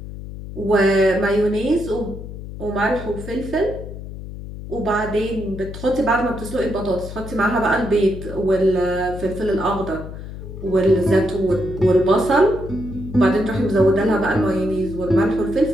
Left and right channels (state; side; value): noise; left; hum, 11 dB below the sound